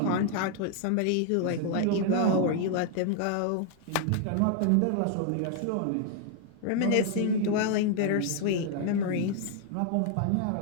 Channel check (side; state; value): both; different; correlation 0.00